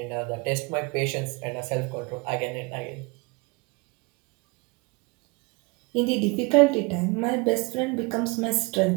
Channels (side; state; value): left; quieter; 27.1 dB